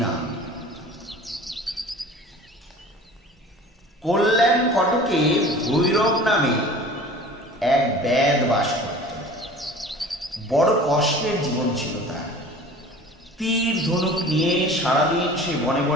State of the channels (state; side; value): normal; both; correlation 0.42